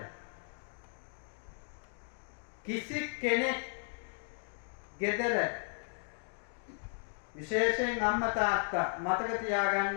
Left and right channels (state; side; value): silent; right; 54 dB below the other